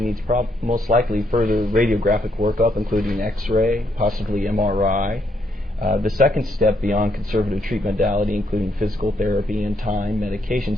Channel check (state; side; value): normal; both; correlation 0.75